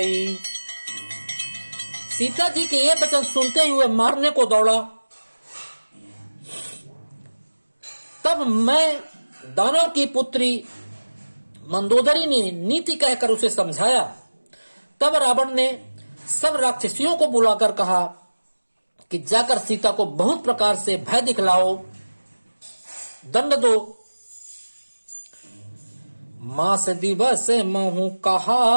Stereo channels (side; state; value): both; inverted; correlation -1.00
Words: सीता जी के ये वचन सुनते हुए मारने को दौड़ा। तब मैं दानव की पुत्री मंदोदरी ने नीति कहकर उसे समझाया। तब रावण ने सब राक्षसियों को बुलाकर कहा कि जाकर सीता को बहुत प्रकार से भय दिखलाओ, दंड दो। मास दिवस महु